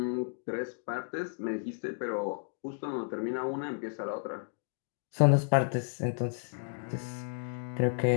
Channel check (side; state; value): right; silent; digital silence